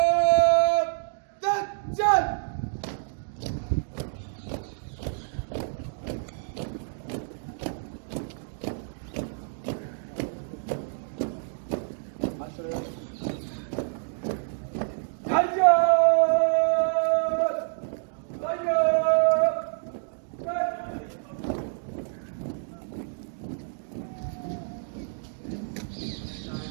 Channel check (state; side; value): silent; left; digital silence